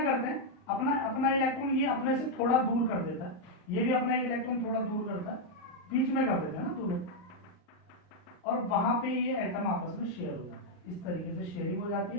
करते हैं? अपना अपना इलेक्ट्रॉन ये अपने से थोड़ा दूर कर देता है, ये भी अपना एक इलेक्ट्रॉन थोड़ा दूर करता है, बीच में कर देते हैं ना दोनों, और वहां पे ये एटम आपस में शेयर हो जाता है। इस तरीके से शेयरिंग हो जाती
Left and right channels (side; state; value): right; late; 39 ms